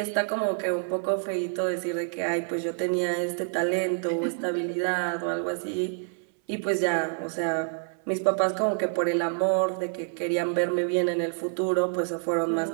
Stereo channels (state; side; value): silent; left; 60 dB below the other